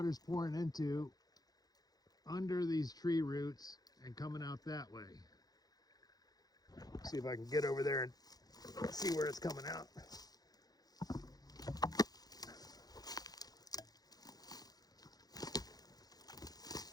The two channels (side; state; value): right; late; 0.19 ms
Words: pouring into under these tree roots and coming out that way. See if I can get over there and see where it's coming out.